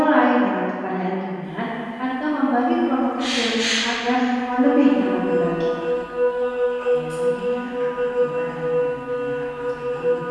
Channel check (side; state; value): both; identical; correlation 1.00